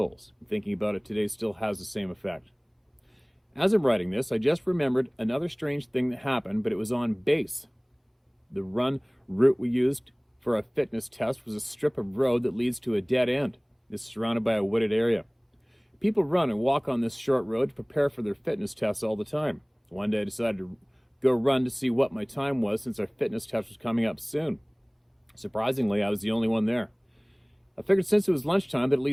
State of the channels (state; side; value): identical; both; correlation 1.00